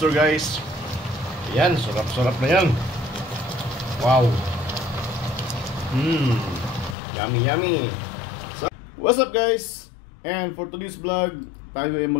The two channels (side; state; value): right; drops out; at 7.0 s